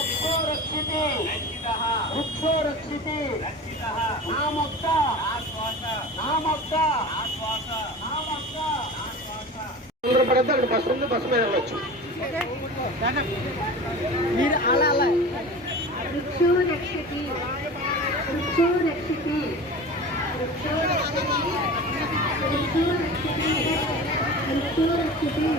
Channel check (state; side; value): normal; both; correlation 0.34